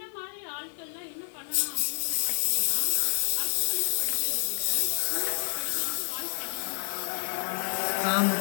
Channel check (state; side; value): silent; right; 59 dB below the other